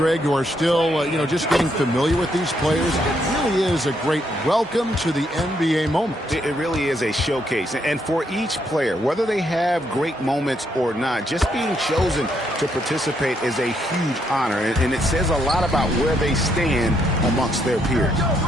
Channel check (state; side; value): normal; both; correlation 0.75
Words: who are still, just getting familiar with these players, it really is a great welcome to the NBA moment. It really is a showcase. And for each player, whether they have great moments or not, just being chosen to participate is a huge honor. And it says a lot about where they stand amongst their peers.